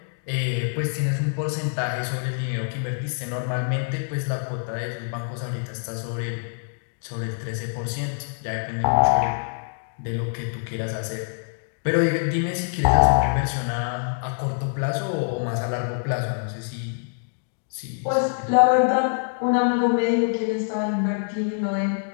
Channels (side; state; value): right; silent; digital silence